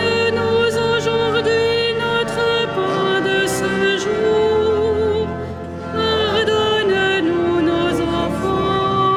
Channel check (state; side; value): identical; both; correlation 1.00